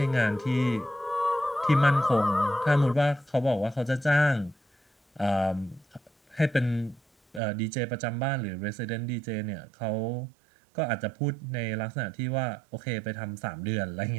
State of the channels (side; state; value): left; drops out; at 7.4 s